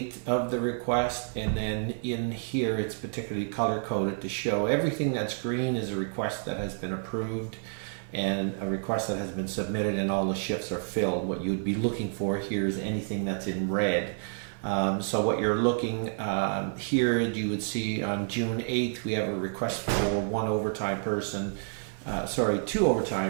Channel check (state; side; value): silent; left; 58 dB below the other